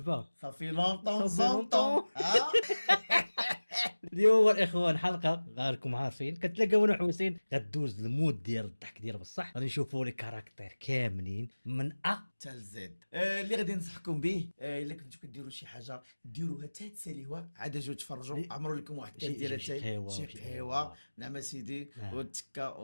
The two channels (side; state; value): both; inverted; correlation -1.00